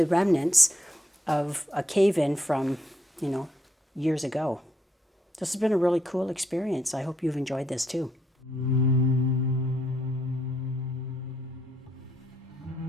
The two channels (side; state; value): both; normal; correlation 0.76